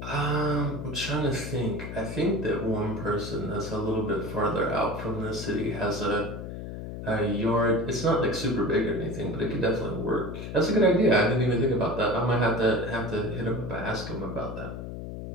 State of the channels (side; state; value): left; noise; hum, 8 dB below the sound